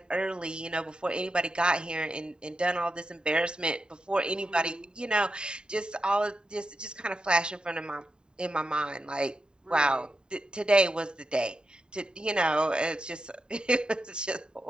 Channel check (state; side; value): late; left; 0.048 ms